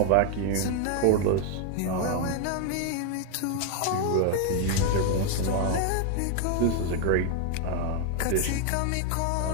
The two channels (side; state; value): both; different; correlation 0.00